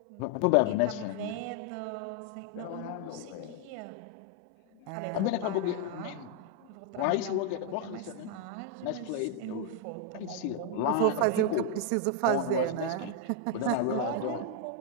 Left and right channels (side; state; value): both; different; correlation 0.00